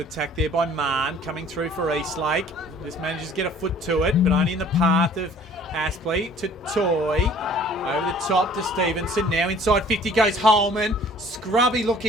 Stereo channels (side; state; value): both; normal; correlation 0.53